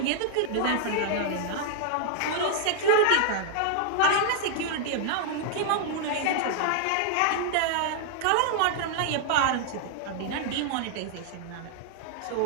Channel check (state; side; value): different; both; correlation -0.01